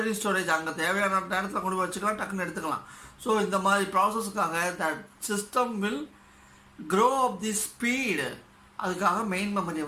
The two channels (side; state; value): both; identical; correlation 1.00